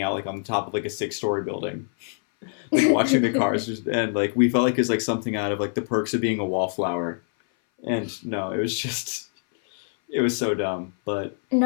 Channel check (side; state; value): right; silent; 59 dB below the other